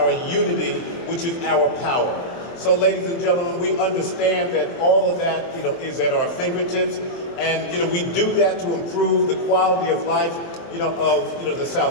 unity, which is our power. So, ladies and gentlemen, we understand that all of that, is at our fingertips, and we do that to improve the quality of life, of the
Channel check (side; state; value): right; late; 23 ms